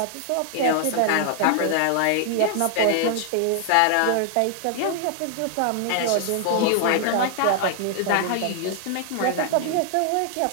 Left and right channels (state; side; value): different; both; correlation 0.00